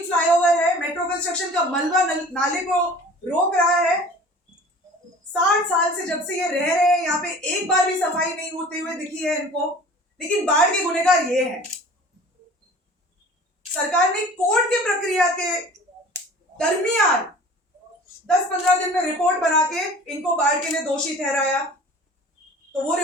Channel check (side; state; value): both; normal; correlation 0.44